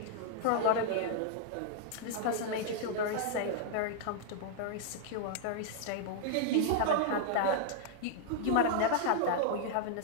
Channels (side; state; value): both; different; correlation -0.01